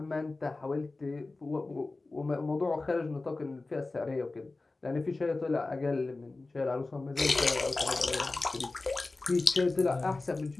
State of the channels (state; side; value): quieter; right; 3.3 dB